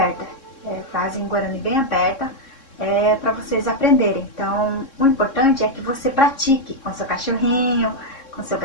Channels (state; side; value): late; right; 3.6 ms